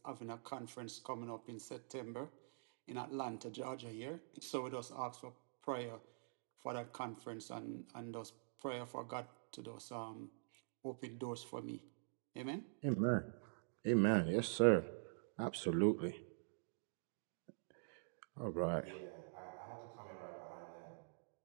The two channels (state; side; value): silent; left; digital silence